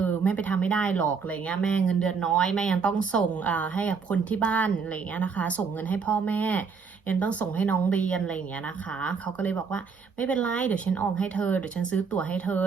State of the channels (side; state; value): left; quieter; 5.5 dB